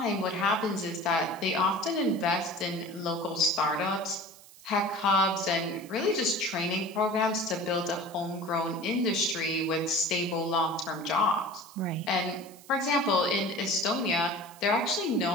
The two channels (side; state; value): right; noise; hiss, 21 dB below the sound